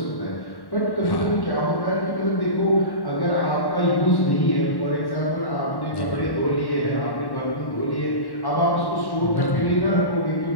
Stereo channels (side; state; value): right; late; 1.1 ms